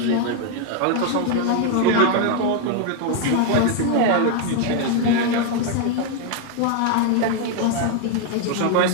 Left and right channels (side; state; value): both; different; correlation 0.01